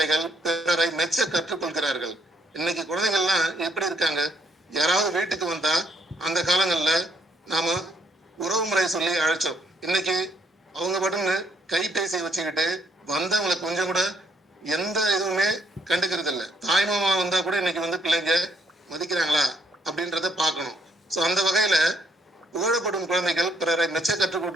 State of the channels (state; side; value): normal; both; correlation 0.70